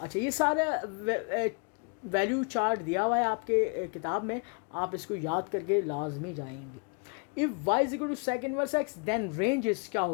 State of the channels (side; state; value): right; quieter; 37.1 dB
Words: ये सारा वैल्यू चार्ट दिया हुआ है आपके किताब में, आप इसको याद करके लाजमी जाएंगे। If y is equal to sec inverse x then range is क्या